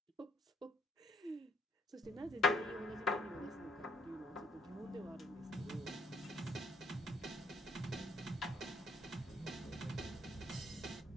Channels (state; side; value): normal; both; correlation 0.67